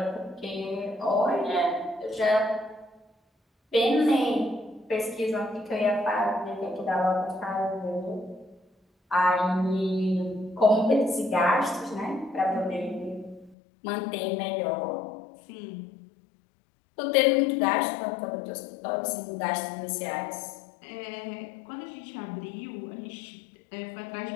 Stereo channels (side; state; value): right; drops out; at 13.6 s